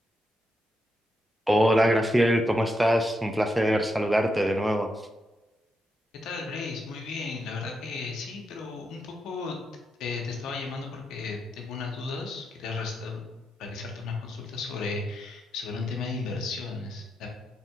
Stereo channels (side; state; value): both; normal; correlation 0.84